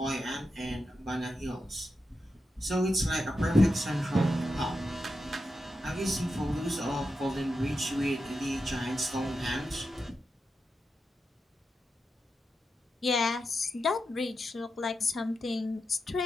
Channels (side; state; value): both; normal; correlation 0.88